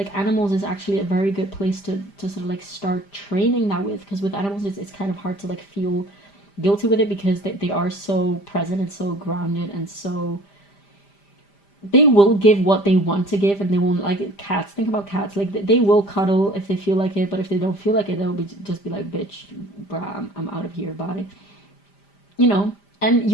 animals is actually a very good place to sort of like start training that with, because with animals it's kind of hard to like feel guilty with it, because they are so present and so grounded, and so they will give what they want to give, and they won't, like cats. Think about cats. Like, they will cuddle if they feel like it, but if they don't feel like it, they'll just be like, bitch, bruh, I'm out of here, bye. You know, and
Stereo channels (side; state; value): right; late; 5.0 ms